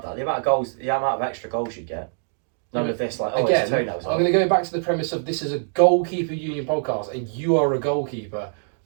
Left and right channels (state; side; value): silent; left; digital silence